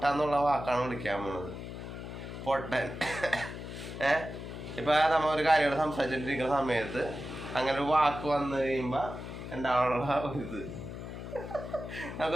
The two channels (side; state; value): left; noise; hum, 9 dB below the sound